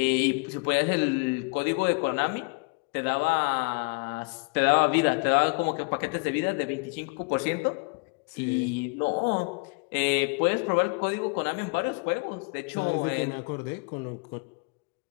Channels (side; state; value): right; quieter; 32.8 dB